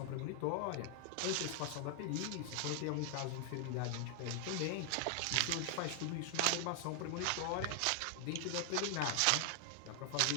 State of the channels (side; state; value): both; different; correlation 0.00